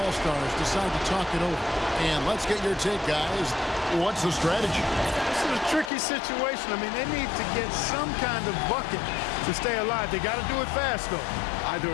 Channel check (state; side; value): drops out; right; at 5.9 s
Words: decide to talk it over. And let's get your take, guys. What's the strategy? This is a tricky situation. I mean, they need to get some kind of bucket to stay alive. They got to do it fast, though. Either